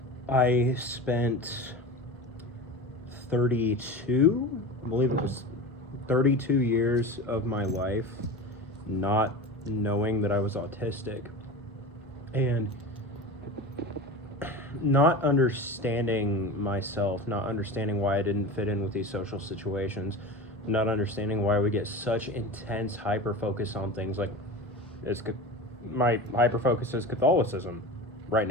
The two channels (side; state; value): both; normal; correlation 0.30